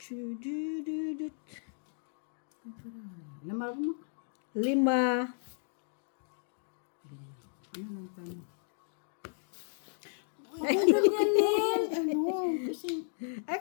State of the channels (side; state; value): right; silent; digital silence